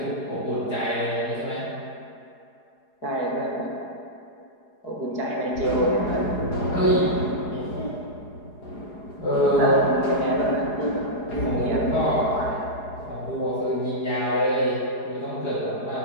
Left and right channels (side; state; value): right; late; 4.8 ms